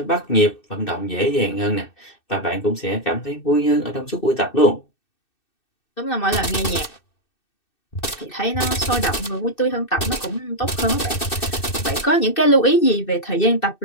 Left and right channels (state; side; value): late; right; 2.6 ms